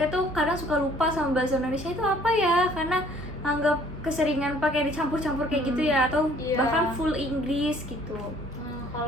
tuh kadang suka lupa sama bahasa Indonesia itu apa ya, karena anggap keseringan pakai dicampur-campur kayak gitu ya, atau Iya. bahkan full Inggris gitu.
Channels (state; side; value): normal; both; correlation 0.57